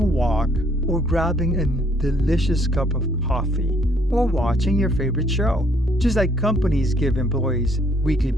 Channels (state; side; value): normal; both; correlation 0.66